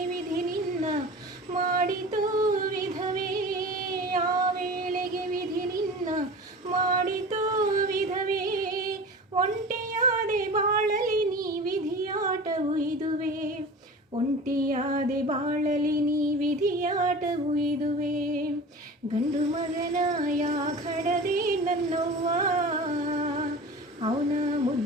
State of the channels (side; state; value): both; normal; correlation 0.36